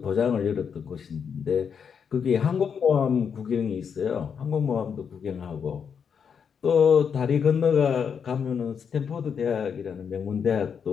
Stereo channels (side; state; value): right; quieter; 6.9 dB